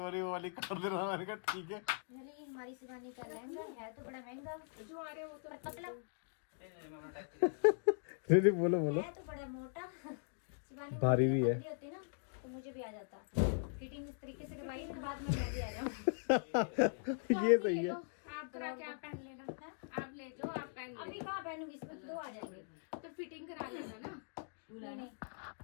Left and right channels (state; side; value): silent; right; digital silence